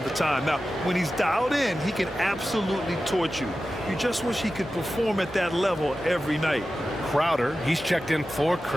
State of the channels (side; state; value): both; normal; correlation 0.94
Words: to time. Now, when he's dialed in, he can absolutely torch you. You just wish he could perform at that level every night. Crowder, he's checked in for